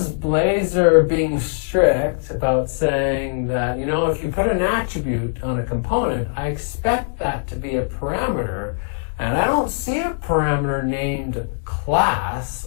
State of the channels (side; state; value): right; silent; digital silence